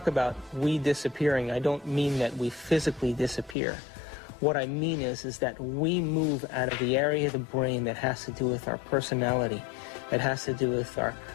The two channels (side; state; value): right; drops out; at 3.6 s